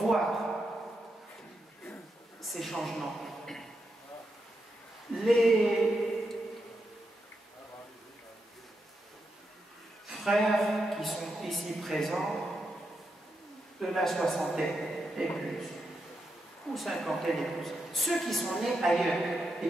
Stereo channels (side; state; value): both; normal; correlation 0.85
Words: ces changements. Les frères qui sont ici présents, de la soixantaine et plus, ou cinquantaine et plus, ceux qui sont nés ailleurs et